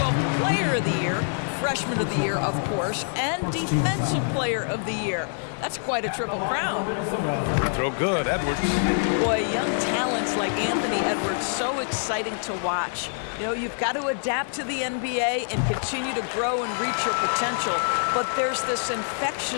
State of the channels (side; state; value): right; silent; digital silence